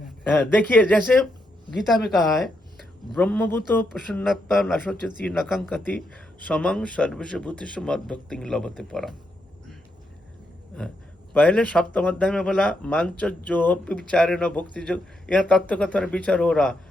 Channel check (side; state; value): both; normal; correlation 0.81